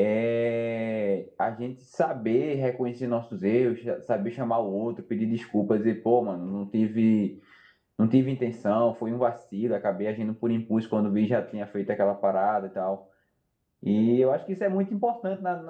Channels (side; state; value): both; identical; correlation 1.00